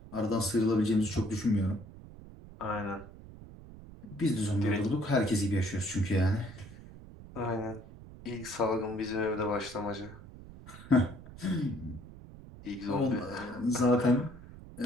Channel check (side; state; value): right; noise; rumble, 17 dB below the sound